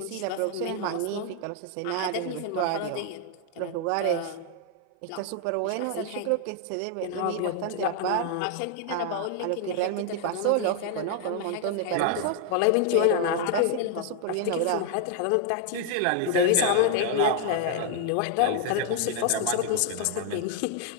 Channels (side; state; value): both; different; correlation 0.00